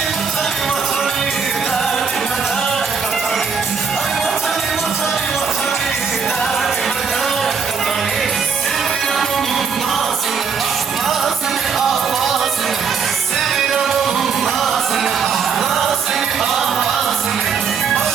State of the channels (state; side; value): quieter; left; 5.9 dB